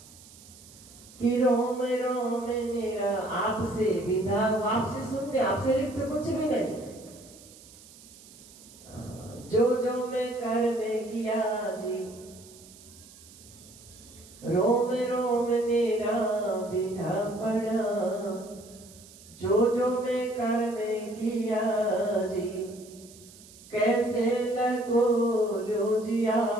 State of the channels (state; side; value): noise; right; hiss, 21 dB below the sound